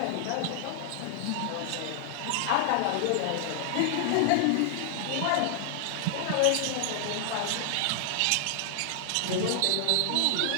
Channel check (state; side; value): different; both; correlation 0.00